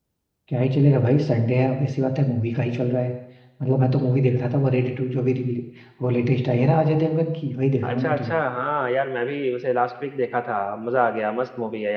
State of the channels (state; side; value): identical; both; correlation 1.00